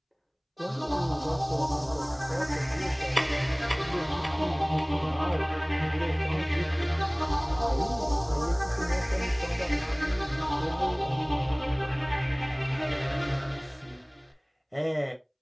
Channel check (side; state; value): both; identical; correlation 1.00